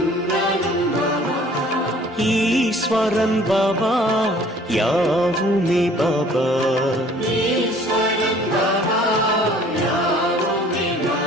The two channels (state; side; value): normal; both; correlation 0.53